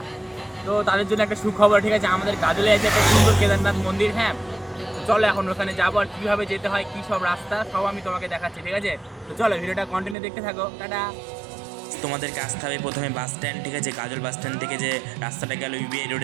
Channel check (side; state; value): left; drops out; at 10.2 s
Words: তো তাদের জন্য একটা সুখবর, ঠিক আছে। আমাদের গাজলে আছে একটা সুন্দর কেদারনাথ মন্দির। হ্যাঁ, তো চলো এখন ওখানে যাবো, আর কীভাবে যেতে হয়, কী সব রাস্তা, সব আমি তোমাকে দেখাচ্ছি, ঠিক আছে। তো চলো ভিডিওটা কন্টিনিউ দেখতে থাকো। টাটা। তোমাদেরকে আসতে হবে প্রথমে বাস স্ট্যান্ড, ঠিক আছে। গাজল বাস স্ট্যান্ড থেকে যে রাস্তাটা গেল ইউবিআই